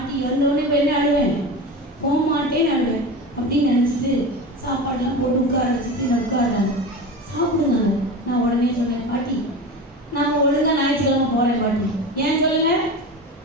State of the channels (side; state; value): both; normal; correlation 0.28